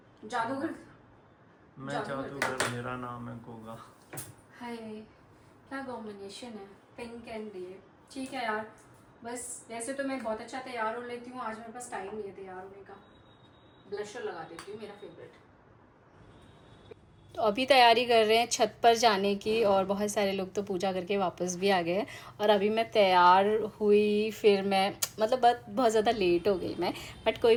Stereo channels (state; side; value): identical; both; correlation 1.00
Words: जादूगर? मैं जादूगर, मेरा नाम है गोगा। हाय, क्या कॉम्बिनेशन है, पिंक एंड ये। ठीक है यार, बस वैसे तो मैं बहुत अच्छा तैयार हो लेती हूँ, आज मेरे पास टाइम नहीं है तैयार होने का। ब्लशर लगा देती हूँ, मेरा फेवरेट। तो अभी तैयारी कर रहे हैं छत पर जाने की, और बहुत सारे लोग तो पूजा करके वापस भी आ गए हैं। और अभी मैं तैयार हुई, फिर मैं मतलब बहुत ज़्यादा लेट हो गई मैं, बट कोई